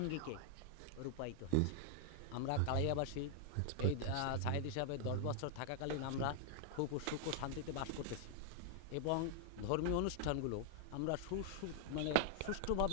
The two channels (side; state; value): both; different; correlation 0.00